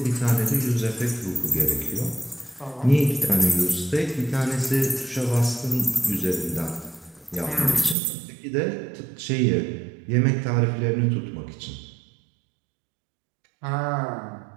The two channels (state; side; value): drops out; left; at 8.0 s